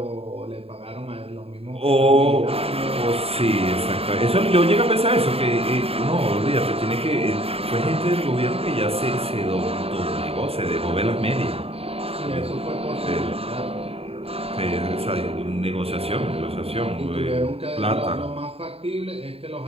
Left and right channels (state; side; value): late; left; 0.28 ms